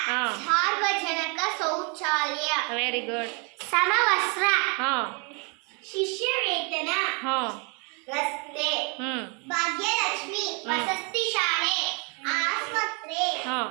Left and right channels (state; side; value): quieter; left; 34.0 dB